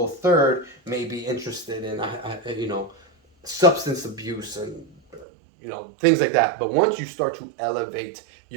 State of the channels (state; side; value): drops out; left; at 5.2 s